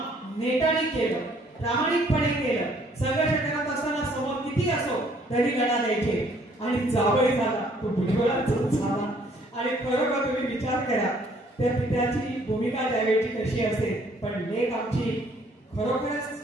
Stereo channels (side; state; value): both; normal; correlation 0.62